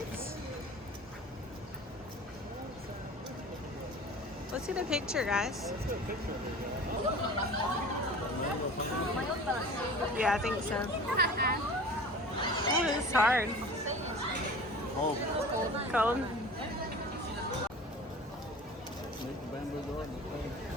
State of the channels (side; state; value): both; normal; correlation 0.40